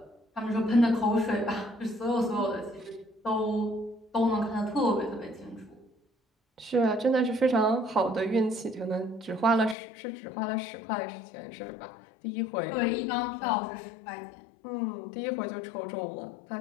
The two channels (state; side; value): drops out; right; at 9.8 s